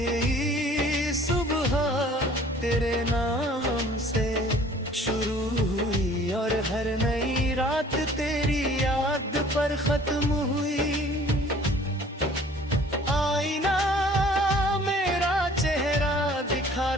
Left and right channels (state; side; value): normal; both; correlation 0.52